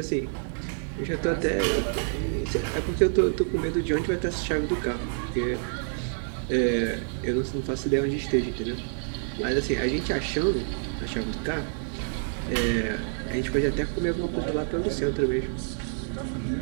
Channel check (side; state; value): left; silent; digital silence